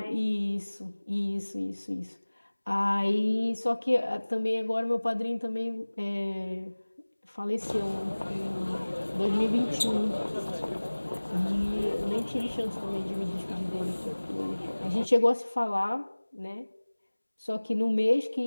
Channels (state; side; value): inverted; both; correlation -1.00